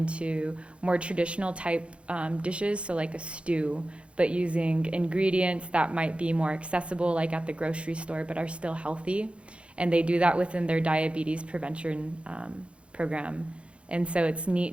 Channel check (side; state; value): left; late; 0.059 ms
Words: more traditional type dishes, so like a stew, but using ingredients that might be more accessible like at the grocery store but are still healthy. And they do that within their diabetes prevention program. And so it's